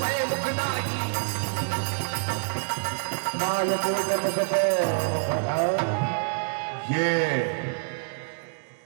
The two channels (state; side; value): silent; left; digital silence